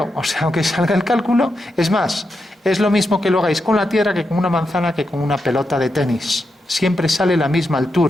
o sea, aunque salga el cálculo, es más, es lo mismo que lo hagáis con la Tierra que con una manzana que con una pelota de tenis. Siempre sale la misma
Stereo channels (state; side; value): normal; both; correlation 0.86